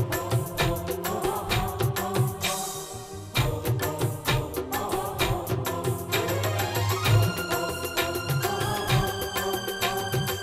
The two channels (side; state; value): both; identical; correlation 1.00